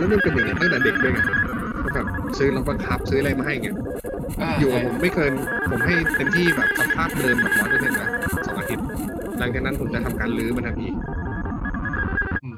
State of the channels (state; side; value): identical; both; correlation 1.00